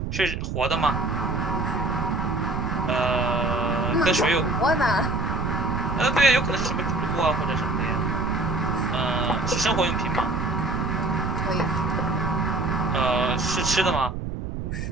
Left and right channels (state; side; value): noise; right; rumble, 5 dB below the sound